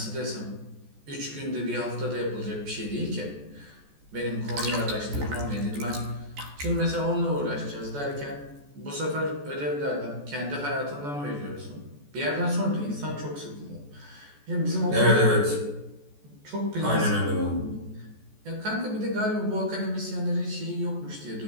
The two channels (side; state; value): left; late; 14 ms